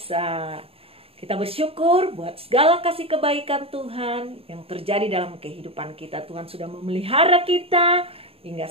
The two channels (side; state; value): left; late; 0.28 ms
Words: Kita bersyukur buat segala kasih kebaikan Tuhan yang terjadi dalam kehidupan kita. Tuhan sudah memelihara kita hingga